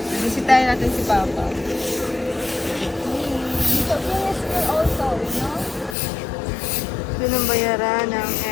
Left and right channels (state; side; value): drops out; right; at 6.0 s